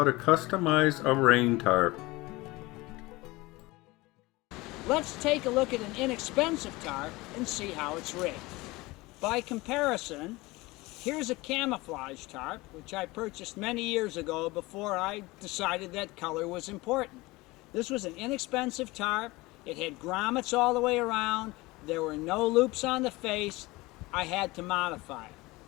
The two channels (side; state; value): right; quieter; 21.6 dB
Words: to customize a rain tarp. Let's take a look at an inexpensive tarp and see how it's rigged. By comparison, here's a camouflage tarp, which I purchased many years ago before I decided that color was important. This was an inexpensive tarp. It had grommets all the way around. There were no loops on the face. I had to modify it.